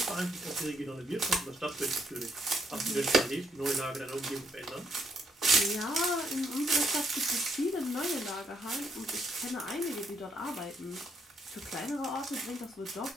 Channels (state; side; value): normal; both; correlation 0.73